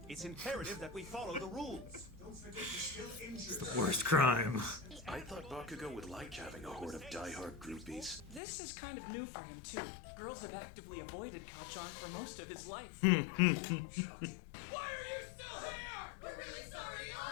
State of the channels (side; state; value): right; drops out; at 8.4 s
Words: It's imperative that we follow the rules. Don't forget you're still injured. The worst crime. I thought Bakugo would like having a horde of diehard groupies. This is kind of new for him, too. Girls have actively avoided Kachan for most of his life. Why are you still here? We're really sorry,